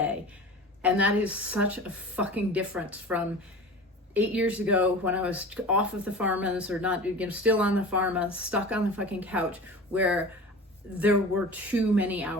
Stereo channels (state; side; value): normal; both; correlation 0.37